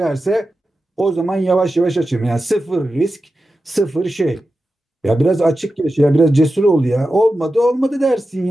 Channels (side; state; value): both; normal; correlation 0.92